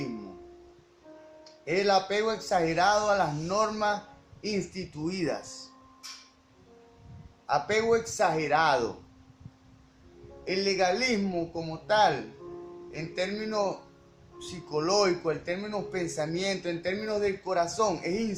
Es el apego exagerado a las normas instituidas. Apego exagerado. El legalismo como tal, en términos psicológicos, en términos pensamiento, en términos del corazón, es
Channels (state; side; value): identical; both; correlation 1.00